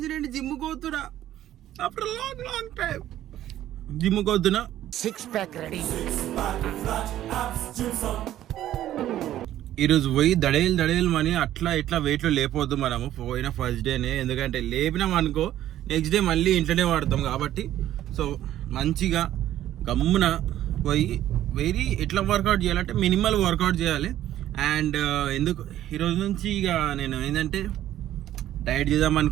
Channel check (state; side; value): quieter; left; 12.7 dB